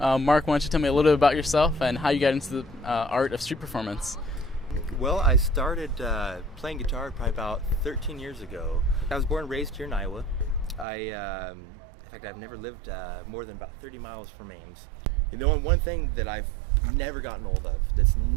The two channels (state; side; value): drops out; left; at 10.9 s